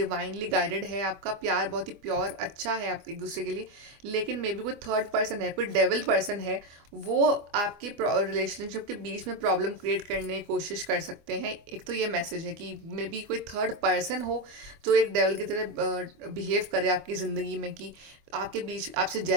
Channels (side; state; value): left; late; 24 ms